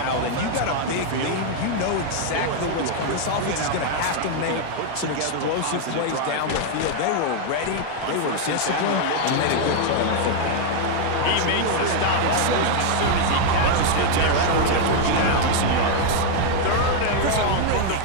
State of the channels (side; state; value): both; different; correlation 0.00